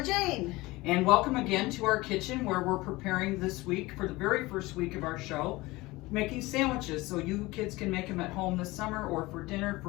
Jane. And welcome again to our kitchen where we're preparing this week for the very first week of our show, making sandwiches so you kids can make them at home this summer or for dinner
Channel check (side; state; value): right; quieter; 20.9 dB